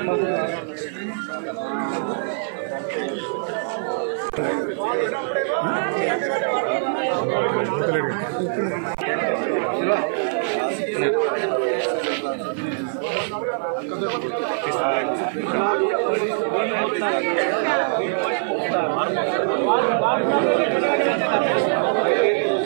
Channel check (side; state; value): left; silent; 58 dB below the other